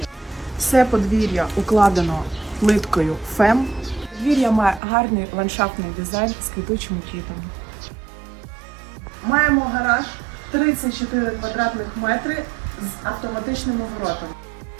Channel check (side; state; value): left; drops out; at 4.8 s